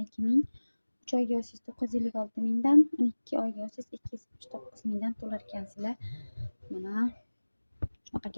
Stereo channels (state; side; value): inverted; both; correlation -1.00